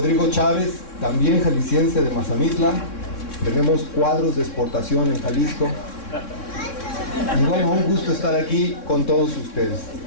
Chávez, también jalisciense de Mazamitla. Tenemos cuadros de exportación en Jalisco, y bueno, un gusto estar aquí con todos ustedes.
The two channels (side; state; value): right; late; 3.6 ms